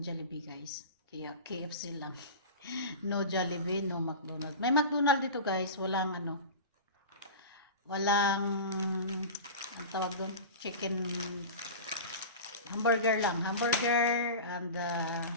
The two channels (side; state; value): both; inverted; correlation -0.31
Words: Jollibee, guys. Kaya KFC lang. No Jollibee, no McDonald's. May McDonald's dito, guys. Walang ang tawag doon, chicken hamburger lang. Hamburger and